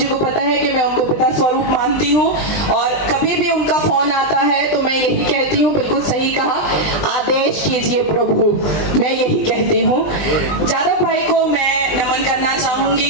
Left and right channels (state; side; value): late; right; 20 ms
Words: को पता है कि मैं उनको पिता स्वरूप मानती हूँ, और कभी भी उनका फोन आता है तो मैं यही कहती हूँ, बिल्कुल सही कहा, आदेश कीजिए प्रभु, मैं यही कहती हूँ। जादव भाई को मैं नमन करना